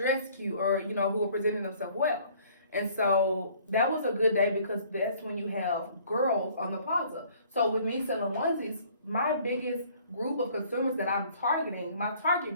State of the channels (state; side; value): inverted; both; correlation -0.57